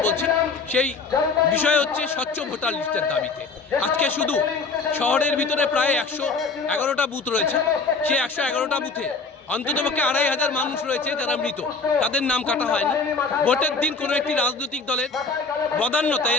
বলছি, সেই বিষয় হচ্ছে স্বচ্ছ ভোটার লিস্টের দাবিতে। আজকে শুধু শহরের ভিতরে প্রায় 111টা বুথ রয়েছে। সেই 111টা বুথে অন্ততপক্ষে 2500 মানুষ রয়েছে যারা মৃত, তাদের নাম কাটা হয়নি। ভোটের দিন কোনো একটি রাজনৈতিক দলের বদান্যতায়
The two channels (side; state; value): right; quieter; 4.4 dB